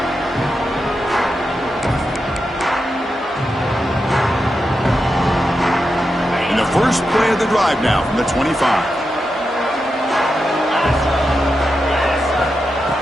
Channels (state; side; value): normal; both; correlation 0.88